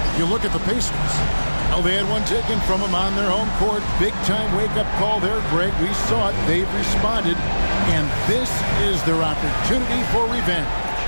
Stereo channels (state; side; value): inverted; both; correlation -1.00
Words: You look at the Pacers. Well, they had one taken from them on their home court. Big-time wake-up call there, Greg. We saw it. They've responded, and this is their opportunity for revenge.